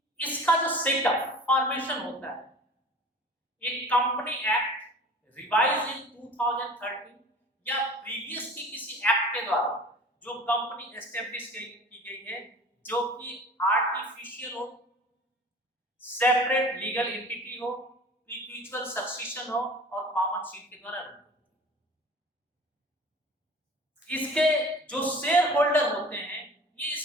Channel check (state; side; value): normal; both; correlation 0.42